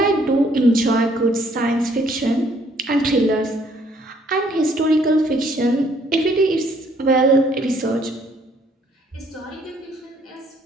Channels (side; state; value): both; normal; correlation 0.64